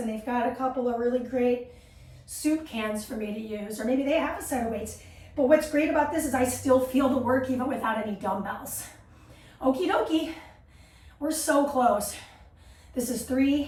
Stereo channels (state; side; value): identical; both; correlation 1.00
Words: they've got a couple of really great soup cans for me to use, or maybe they have a set of weights. But what's great about this is I still feel the work even without any dumbbells. Okie dokie, we're so close. This is